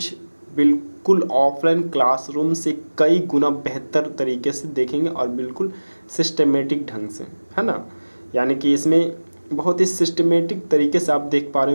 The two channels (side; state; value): both; inverted; correlation -1.00